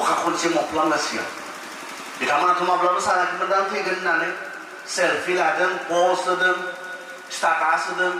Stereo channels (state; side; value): identical; both; correlation 1.00